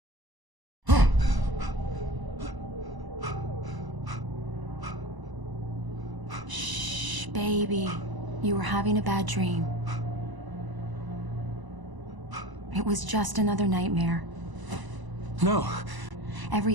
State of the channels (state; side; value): late; left; 1.0 ms